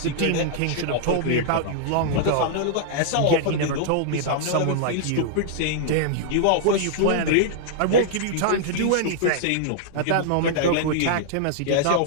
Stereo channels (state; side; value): different; both; correlation -0.01